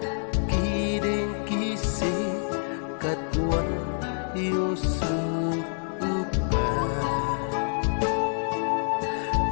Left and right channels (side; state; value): right; silent; digital silence